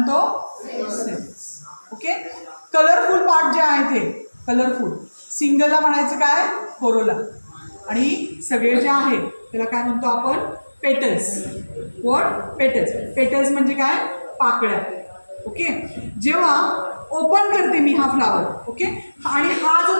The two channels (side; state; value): both; inverted; correlation -1.00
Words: सेपल्स. ओके, कलरफुल पार्ट जे आहे ते कलरफुल, सिंगलला म्हणायचं काय, कोरोला. आणि सगळे जे आहे त्याला काय म्हणतो आपण, पेटल्स. What, petals. पेटल्स म्हणजे काय, पाकळ्या. ओके, जेव्हा ओपन करते मी हा फ्लावर, ओके, आणि हा जो